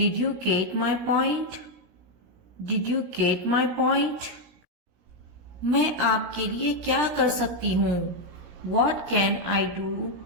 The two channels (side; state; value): left; late; 17 ms